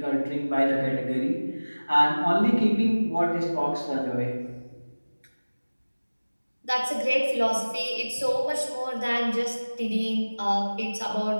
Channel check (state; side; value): inverted; both; correlation -1.00